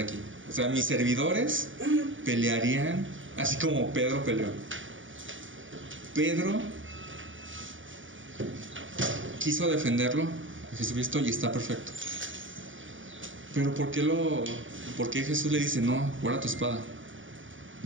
aquí. O sea, mis servidores pelearían así como Pedro peleó. Pedro quiso defenderlo a Jesucristo y está perfecto. Pero ¿por qué Jesús le dice, no, guarda tu espada?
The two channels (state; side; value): late; left; 0.56 ms